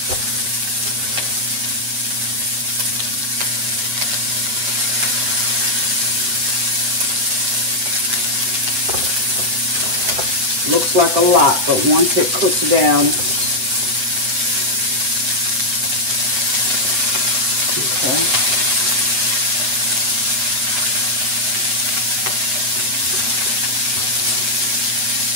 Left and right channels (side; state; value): left; late; 8.1 ms